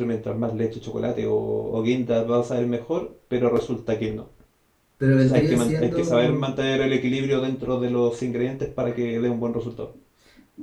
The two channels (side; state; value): both; identical; correlation 1.00